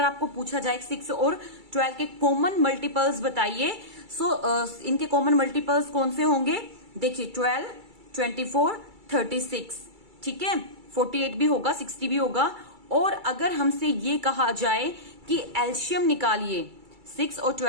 आपको पूछा जाए 6 और 12 के कॉमन मल्टीपल्स बताइए, सो इनके कॉमन मल्टीपल्स कौन से होंगे। देखिए 12, 24, 36, ठीक है, 48 भी होगा, 60 भी होगा। और अगर हमसे ये कहा जाए कि एलशियम निकालिए, 6 और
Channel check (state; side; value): late; left; 2.3 ms